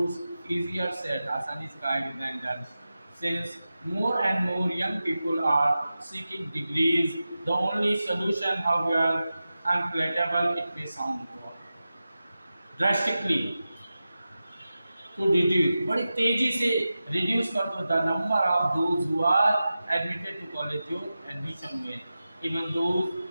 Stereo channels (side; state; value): both; inverted; correlation -0.94